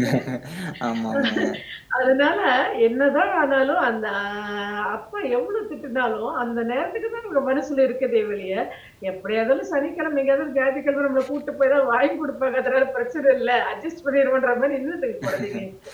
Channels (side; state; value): both; identical; correlation 1.00